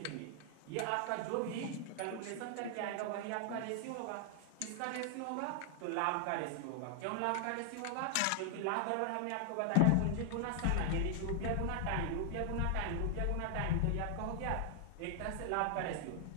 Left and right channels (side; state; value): both; different; correlation 0.00